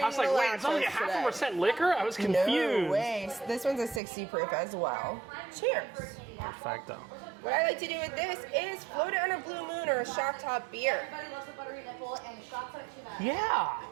I was like, the wait, it's only lactose today. 0.5% liquor? I was confused. No way. This one's a 60 proof as well. Cheers. Perfecto. What I like to do with this is float it on a blue moon or a shock top beer. Everybody loves the buttery nipple and shots of it too much. Yeah.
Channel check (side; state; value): left; drops out; at 4.0 s